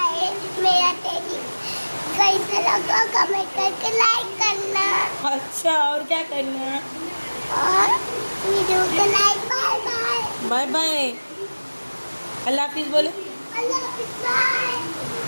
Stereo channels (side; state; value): both; inverted; correlation -1.00